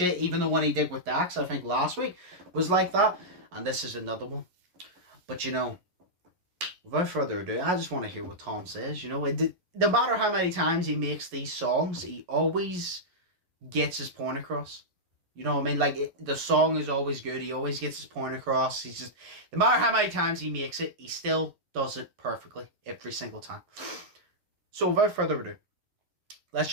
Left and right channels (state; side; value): late; left; 11 ms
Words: Even the one he did with Dax, I think last week, was like that. And this is another one. But, you know, without further ado, I just want to hear what Tom says. You know, no matter how many times he makes these songs, he always gets his point across. You know what I mean? Like, the song is always good. He always gets his point across. He's just, no matter how many times he makes it, he still does it perfectly every single time. So without further ado, let's